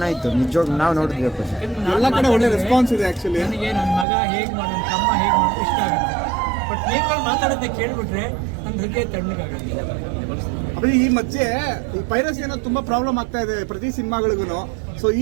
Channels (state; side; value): drops out; left; at 4.0 s